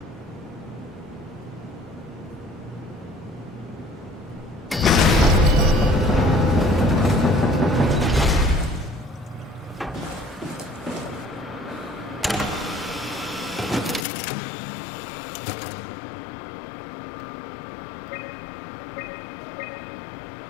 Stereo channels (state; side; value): drops out; right; at 14.1 s